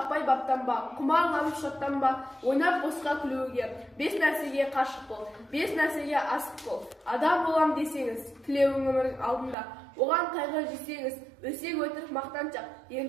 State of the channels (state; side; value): drops out; left; at 9.6 s